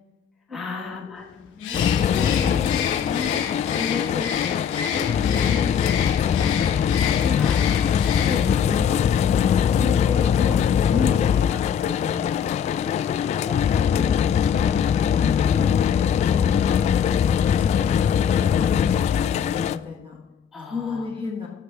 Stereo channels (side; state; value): right; quieter; 7.9 dB